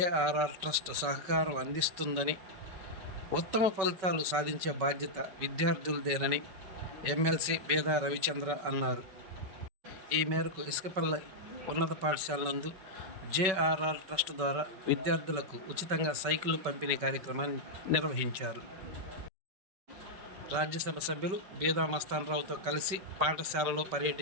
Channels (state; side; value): late; left; 5.3 ms